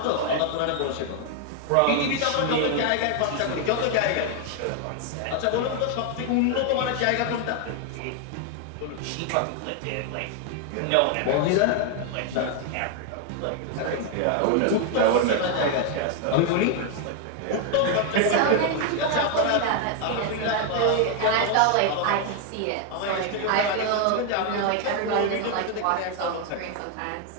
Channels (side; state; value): both; different; correlation 0.01